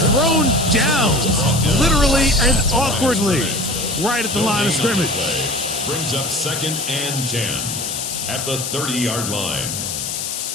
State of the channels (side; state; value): left; noise; hiss, 4 dB below the sound